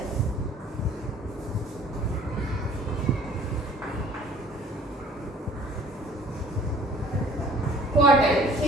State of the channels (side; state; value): both; normal; correlation 0.53